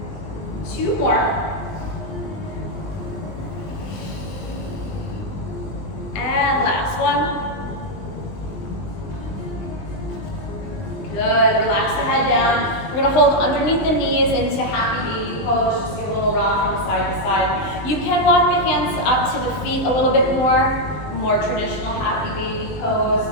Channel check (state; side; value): late; right; 20 ms